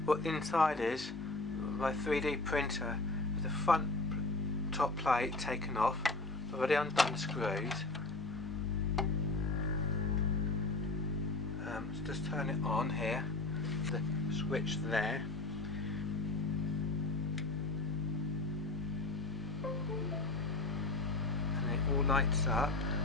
what the inside is of my 3D printer. With the front top plate taken off, I've already undone the screws. So just turn it on here, the switch there. And it all lights up,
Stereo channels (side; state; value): right; quieter; 3.2 dB